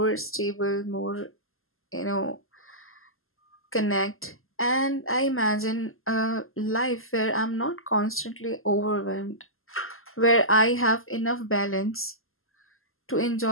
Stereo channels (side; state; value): right; late; 0.61 ms